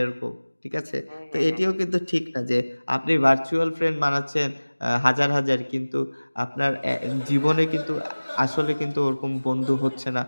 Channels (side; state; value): both; inverted; correlation -1.00